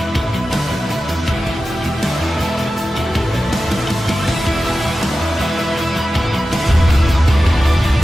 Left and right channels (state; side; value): normal; both; correlation 0.93